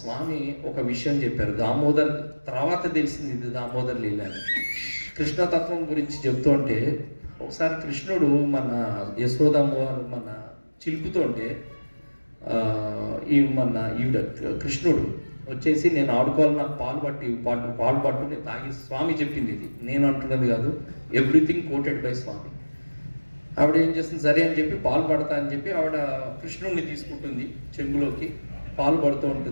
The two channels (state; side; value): inverted; both; correlation -1.00